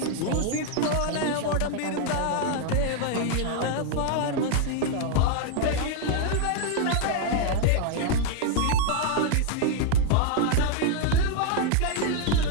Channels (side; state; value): both; different; correlation 0.00